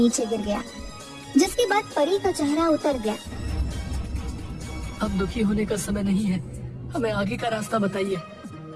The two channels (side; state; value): both; identical; correlation 1.00